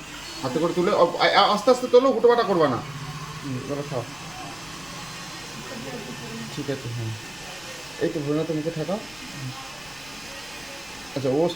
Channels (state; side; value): noise; left; rumble, 23 dB below the sound